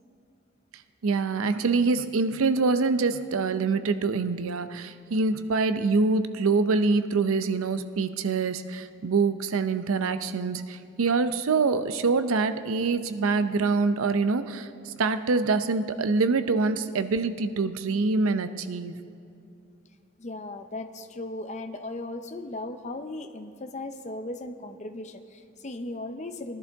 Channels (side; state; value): left; quieter; 3.5 dB